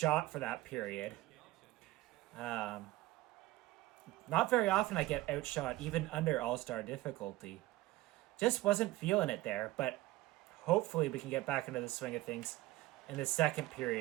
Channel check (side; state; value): left; quieter; 17.7 dB